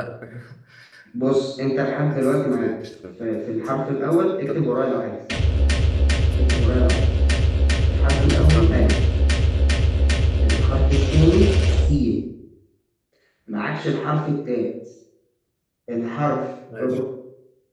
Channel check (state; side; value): identical; both; correlation 1.00